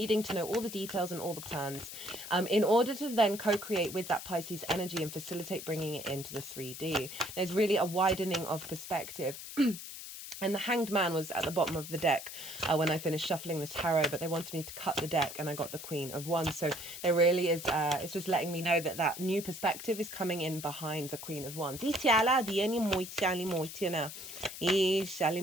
to know all the details and all the plans in order to then co-create with that Pisces energy and facilitate bringing it into the 3D. There's really a widening of perspective. And the Hanged Man was at the bottom of the deck when I finished shuffling the tarot, but they wanted me to cut the deck, and I got the Queen of Wands. So there really is, it's just letting me know that that new perspective is coming in behind the Queen of Wands. There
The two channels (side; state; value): left; noise; hiss, 10 dB below the sound